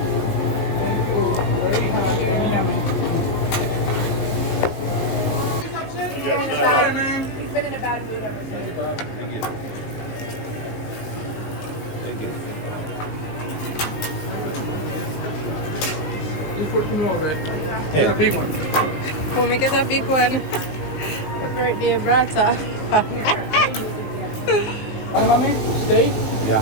He's been in a bad mood ever since. Thank you. Thank you. Just put some more, man. Get a big one. Oh, make it a big one. The birthday brata. Steak? Yeah.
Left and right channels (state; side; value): late; right; 19 ms